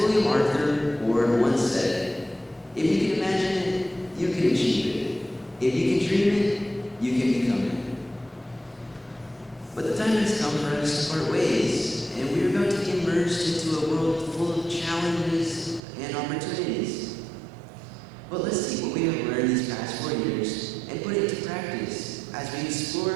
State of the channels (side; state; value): left; drops out; at 15.8 s